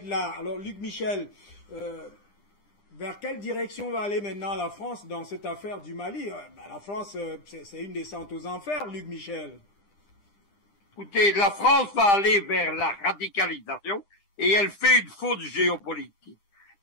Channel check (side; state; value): right; late; 10 ms